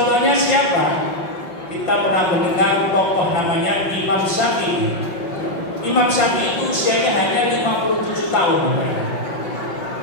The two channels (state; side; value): late; right; 5.8 ms